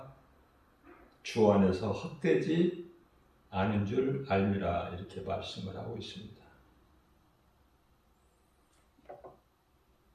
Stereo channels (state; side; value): identical; both; correlation 1.00